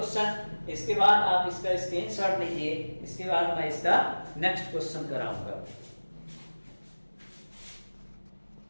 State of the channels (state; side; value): inverted; both; correlation -1.00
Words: इसके बाद आप इसका स्क्रीनशॉट लीजिए, इसके बाद मैं इसका नेक्स्ट क्वेश्चन कराऊंगा।